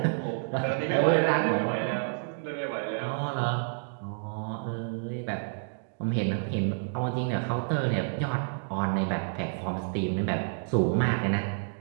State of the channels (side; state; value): left; silent; digital silence